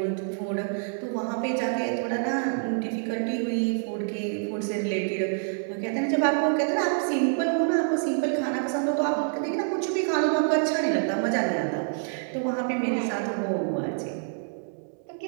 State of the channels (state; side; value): silent; left; digital silence